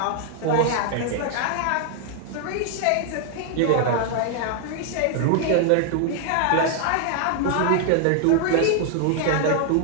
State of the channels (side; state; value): both; different; correlation 0.00